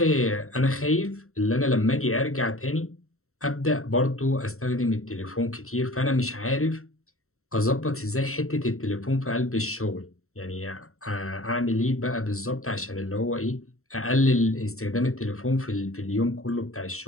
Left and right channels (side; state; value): right; late; 0.63 ms